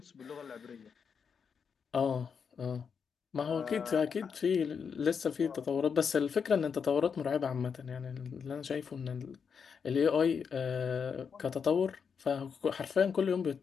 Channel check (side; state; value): right; quieter; 6.4 dB